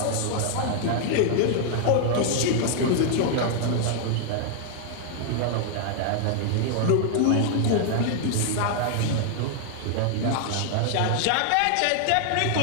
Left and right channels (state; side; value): different; both; correlation 0.00